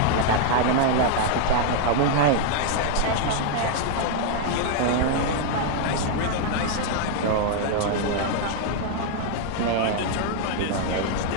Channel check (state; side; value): different; both; correlation -0.01